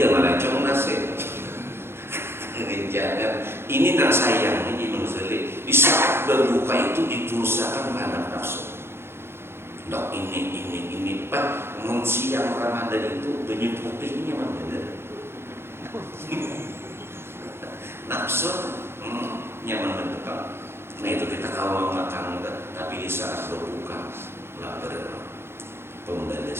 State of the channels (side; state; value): left; late; 0.12 ms